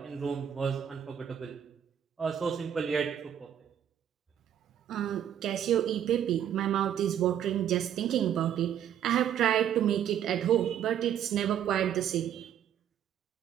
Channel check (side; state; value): left; quieter; 9.7 dB